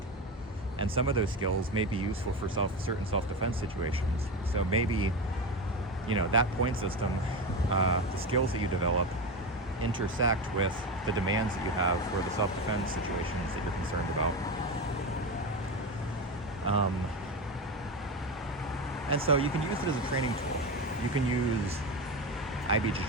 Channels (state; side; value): normal; both; correlation 0.20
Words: And some of those skills may be useful for certain self-defense situations. So maybe, you know, that point system, the skills that you develop intersect with the demands that you have for the self-defense situations that you're concerned about. And so you can use it as a training tool. You can use